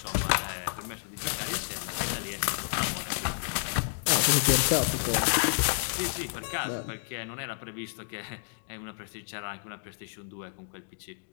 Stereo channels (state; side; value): silent; right; digital silence